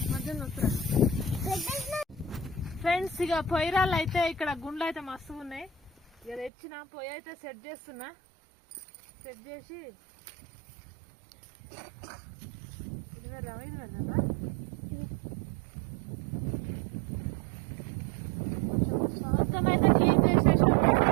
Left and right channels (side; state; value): left; drops out; at 6.5 s